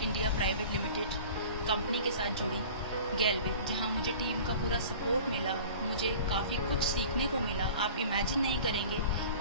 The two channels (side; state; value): both; inverted; correlation -0.42